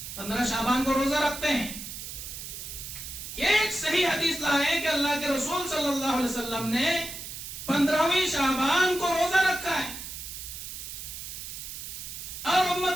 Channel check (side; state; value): right; noise; hiss, 9 dB below the sound